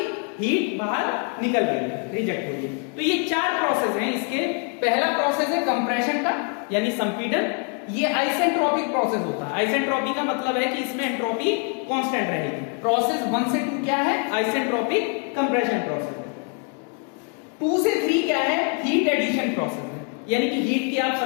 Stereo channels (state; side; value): quieter; right; 39.5 dB